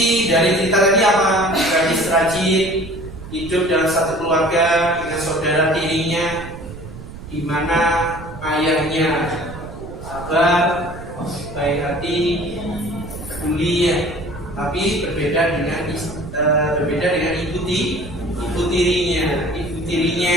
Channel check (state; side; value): noise; right; rumble, 13 dB below the sound